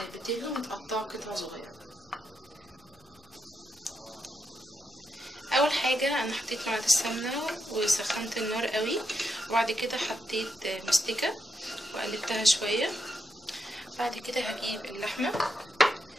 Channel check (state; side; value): normal; both; correlation 0.82